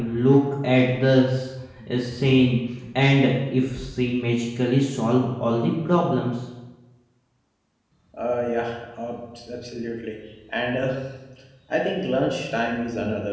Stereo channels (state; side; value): identical; both; correlation 1.00